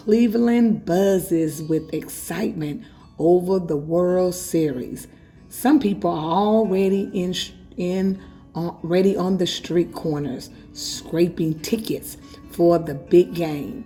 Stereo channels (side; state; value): both; identical; correlation 1.00